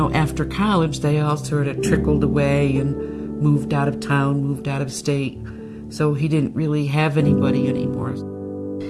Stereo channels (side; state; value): both; identical; correlation 1.00